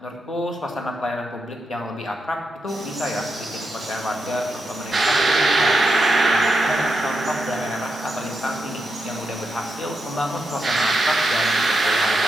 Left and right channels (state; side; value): normal; both; correlation 0.86